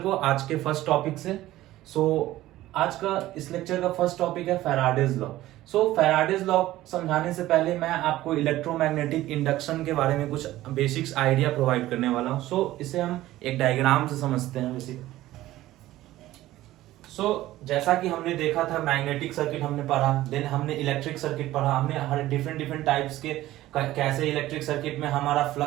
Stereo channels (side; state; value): left; quieter; 15.6 dB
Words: आज के फर्स्ट टॉपिक से। आज का इस लेक्चर का फर्स्ट टॉपिक है फैराडेज लॉ। फैराडेज लॉ समझाने से पहले मैं आपको इलेक्ट्रोमैग्नेटिक इंडक्शन के बारे में कुछ बेसिक्स आइडिया प्रोवाइड करने वाला हूं। इसे हम एक डायग्राम से समझते हैं बेसिक। जैसा कि हमने देखा था मैग्नेटिक सर्किट हमने पढ़ा, देन हमने इलेक्ट्रिक सर्किट पढ़ा, हमने हर डिफरेंट टाइप्स के कैसे इलेक्ट्रिक सर्किट में हमारा